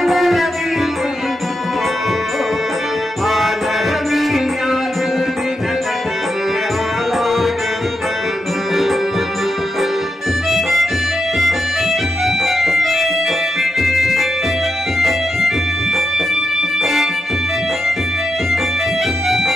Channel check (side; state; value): both; normal; correlation 0.85